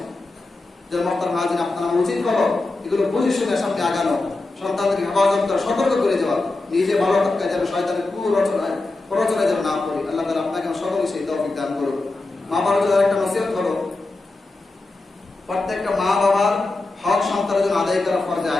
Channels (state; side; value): quieter; right; 3.2 dB